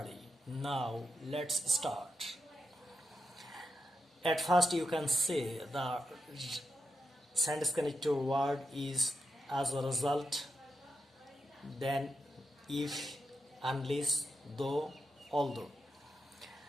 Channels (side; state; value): both; normal; correlation 0.87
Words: Now let's start. At first you can say the sentence connector word is as a result, then if, unless, though, although.